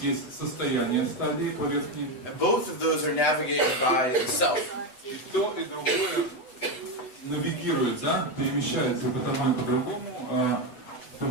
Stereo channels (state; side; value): late; right; 8.0 ms